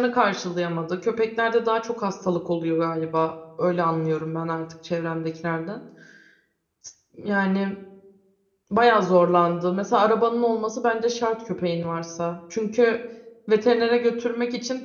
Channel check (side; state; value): both; identical; correlation 1.00